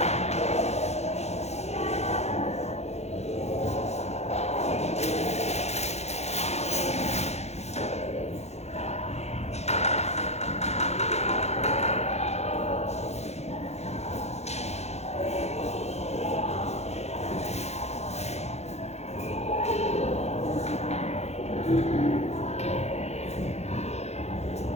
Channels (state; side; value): late; right; 0.31 ms